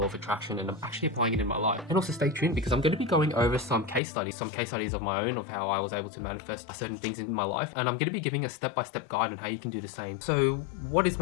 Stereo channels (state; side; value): drops out; right; at 4.0 s